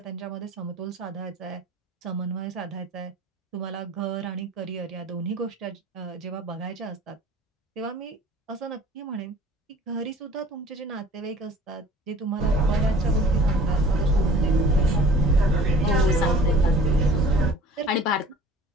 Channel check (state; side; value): normal; both; correlation 0.48